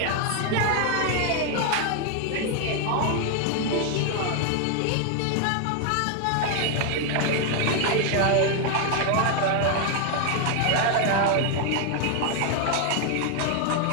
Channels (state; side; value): different; both; correlation 0.01